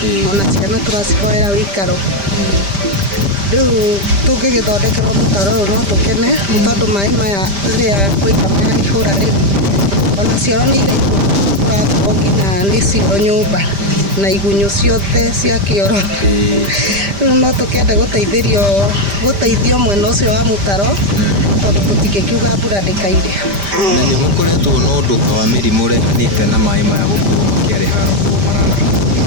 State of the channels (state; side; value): late; left; 5.1 ms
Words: ona ciana turacihoera wikaro. Riu tungigithondekerwo mutaro no tukene tondu mai maya riria koira mahura ri ona cioro ni irakorwo nginya ni cio nyumba na igunyu ciothe cia kioro. Riu no tukende guteithio mwena ucio wa mutaro tondu tutikiuga mbura ndikaire. Na ni mukoretwo no undu wa mirimu rehanite na mai maya gukorwo makiareha marara.